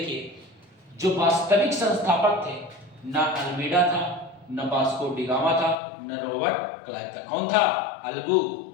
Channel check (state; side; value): drops out; right; at 5.8 s